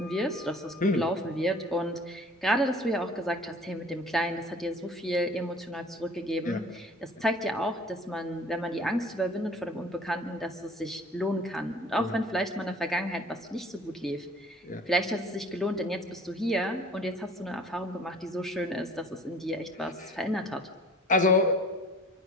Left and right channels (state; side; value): normal; both; correlation 0.50